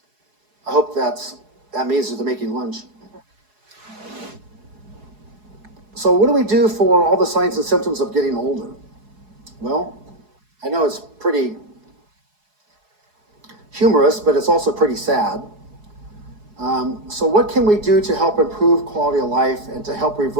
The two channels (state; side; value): late; left; 4.7 ms